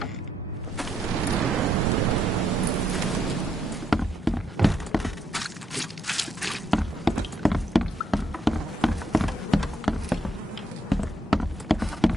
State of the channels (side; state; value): both; normal; correlation 0.76